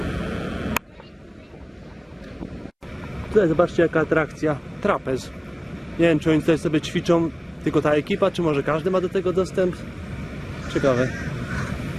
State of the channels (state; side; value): identical; both; correlation 1.00